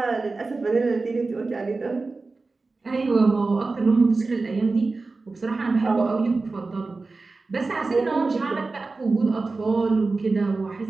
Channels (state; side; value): quieter; left; 3.7 dB